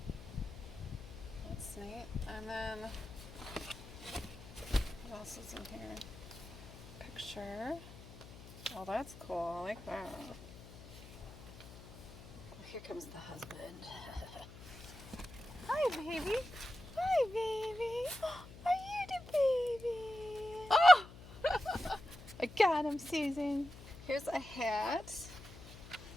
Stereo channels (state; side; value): noise; left; hum, 16 dB below the sound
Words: That's neat. And then, what else is in here? Picture. Oh, that's cool. I like that. Here comes the husband. Hi, baby. Hi, baby. Are you the baby? Oh! I got him, Susan. Here's a hat.